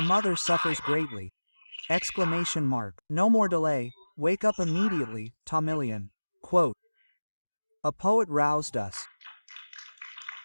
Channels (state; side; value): inverted; both; correlation -1.00